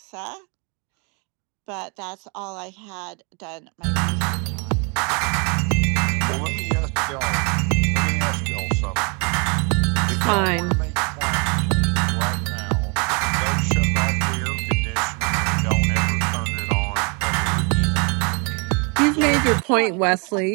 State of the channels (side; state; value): left; quieter; 33.9 dB